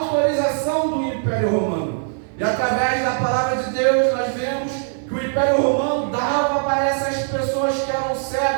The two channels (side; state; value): left; silent; 58 dB below the other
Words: do Império Romano. E através da palavra de Deus nós vemos que o Império Romano dava para essas pessoas que eram